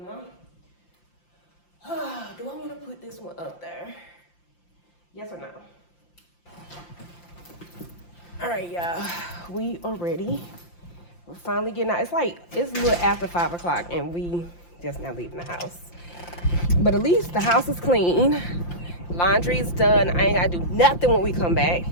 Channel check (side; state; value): right; late; 5.8 ms